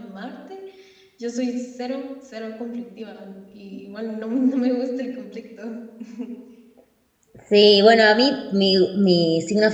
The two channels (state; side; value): identical; both; correlation 1.00